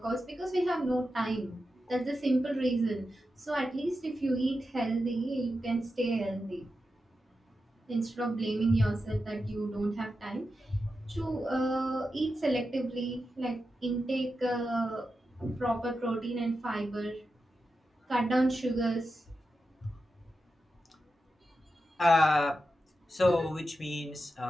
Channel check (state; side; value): normal; both; correlation 0.90